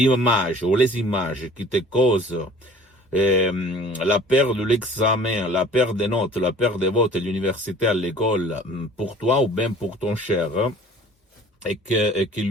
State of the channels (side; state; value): both; normal; correlation 0.49